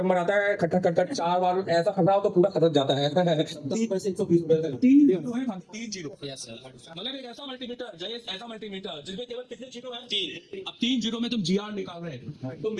आता है, खटखट खटखट 4 बार ऐसा खटरा हो तो पूरा खटक जाता है। 3 जीरो है, 3 जीरो। Yes sir. मतलब एक ऐसा मल्टीमीटर, जैसे ऐसा मल्टीमीटर जिसमें केवल कितने जीरो हैं? 3। अब 3 जीरो में तुम जीआर निकाल रहे हो, तो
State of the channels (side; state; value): both; identical; correlation 1.00